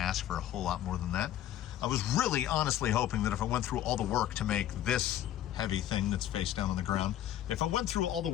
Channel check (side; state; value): right; quieter; 12.0 dB